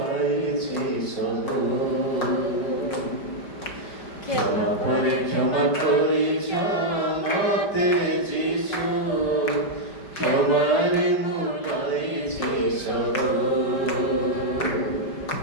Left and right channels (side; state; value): right; late; 5.0 ms